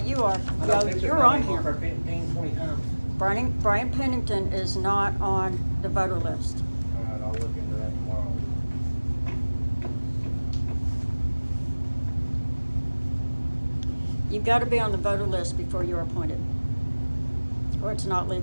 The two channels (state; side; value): inverted; both; correlation -1.00